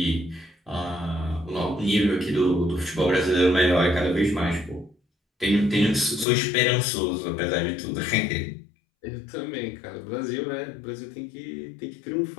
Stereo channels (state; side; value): drops out; right; at 6.2 s